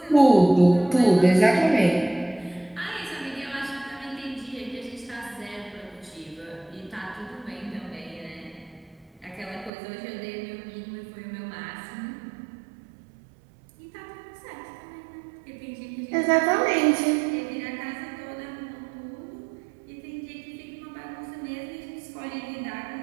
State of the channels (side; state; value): left; drops out; at 9.7 s